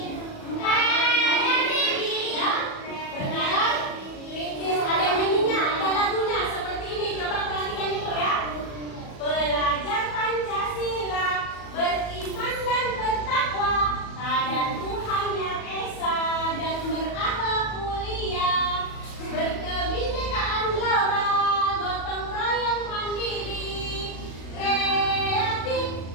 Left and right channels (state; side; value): late; right; 37 ms